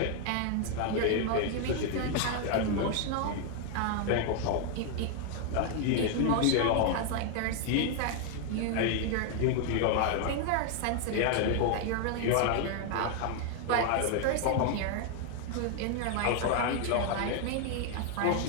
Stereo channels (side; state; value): both; different; correlation 0.00